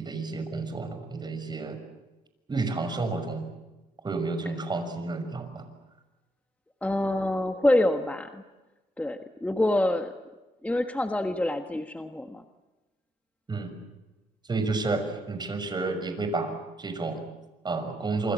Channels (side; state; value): both; normal; correlation 0.80